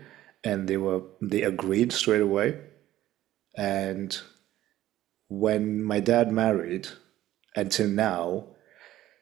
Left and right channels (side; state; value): left; quieter; 14.2 dB